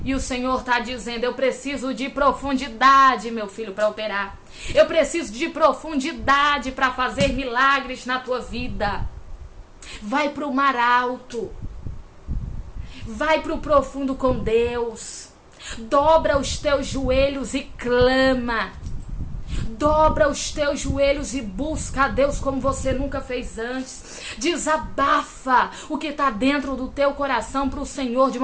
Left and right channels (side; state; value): both; identical; correlation 1.00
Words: E o Senhor está dizendo: eu preciso de profundidade, meu filho, para operar. Eu preciso de profundidade para fazer milagres na tua vida. Vai para o mar alto. Vai para o profundo com Deus. Dobra os teus joelhos e clama. Dobra os teus joelhos e busca a Deus como você nunca fez antes. Desabafa o que está dentro do teu coração para o Senhor de